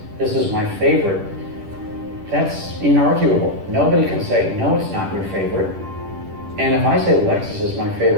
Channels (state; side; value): late; left; 10 ms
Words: this is my favorite, that's inarguable. Nobody can say, no, it's not your favorite. And if I say Lexus is my